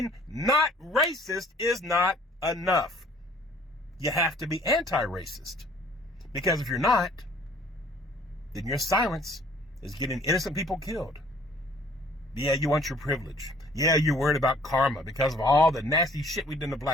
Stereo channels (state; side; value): normal; both; correlation 0.56